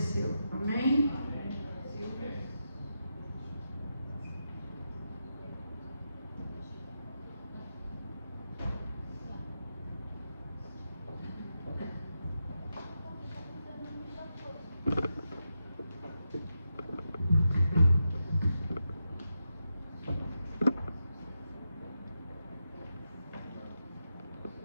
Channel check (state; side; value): inverted; both; correlation -0.87